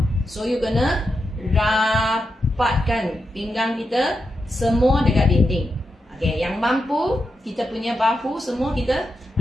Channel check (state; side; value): normal; both; correlation 0.87